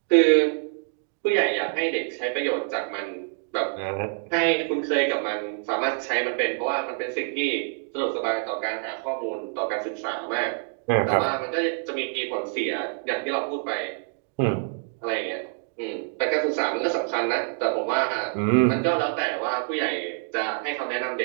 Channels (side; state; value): left; silent; 61 dB below the other